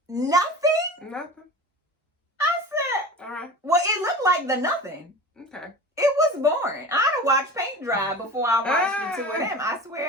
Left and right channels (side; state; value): both; normal; correlation 0.34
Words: Nothing? Nothing. I said. All right. Well, it looked like the nothing. Okay. It was boring. I'd have watched paint dry before I watched the two of them. I